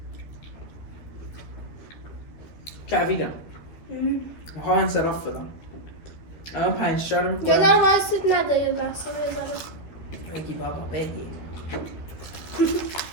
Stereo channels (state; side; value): late; right; 13 ms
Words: کویدم. میخوام انصراف بدم. الان 5 تا رو یه میکنم. ذره وایسید نده یه لحظه یه ذره. بگی بابا بگی.